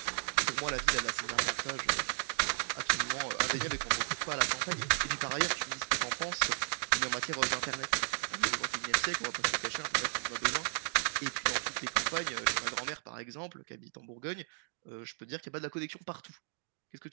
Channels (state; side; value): silent; left; digital silence